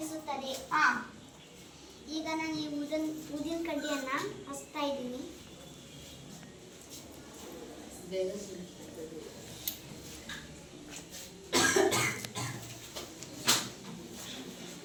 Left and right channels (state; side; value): identical; both; correlation 1.00